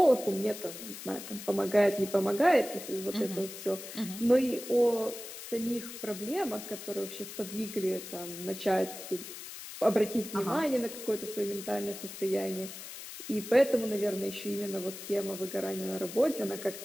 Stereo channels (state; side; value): noise; left; hiss, 11 dB below the sound